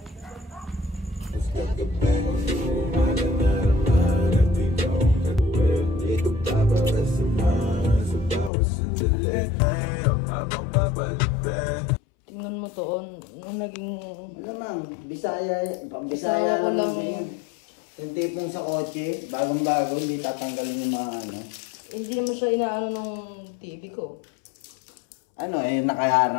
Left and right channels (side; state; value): right; drops out; at 8.5 s